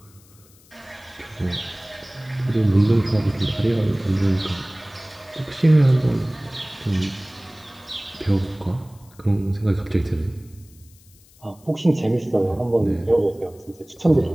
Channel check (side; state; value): left; noise; hiss, 28 dB below the sound